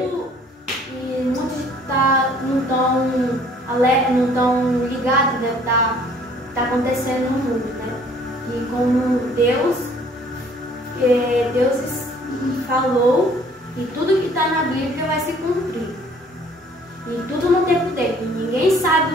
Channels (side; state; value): both; normal; correlation 0.57